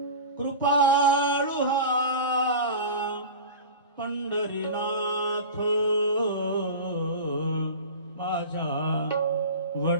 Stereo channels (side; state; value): both; inverted; correlation -0.31